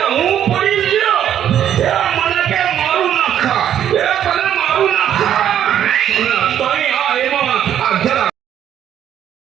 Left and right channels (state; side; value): quieter; left; 10.2 dB